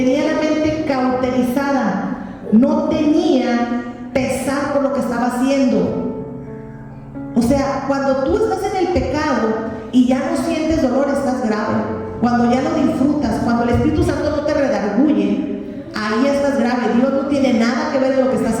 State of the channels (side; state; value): both; identical; correlation 1.00